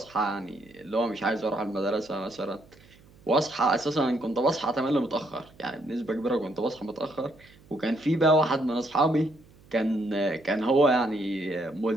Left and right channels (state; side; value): noise; right; hum, 26 dB below the sound